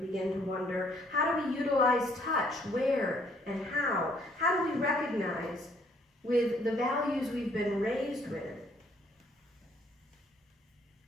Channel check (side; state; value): both; normal; correlation 0.65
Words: begin to wonder. How do we utilize touch, where and how? How do we recognize with the values we've been raised with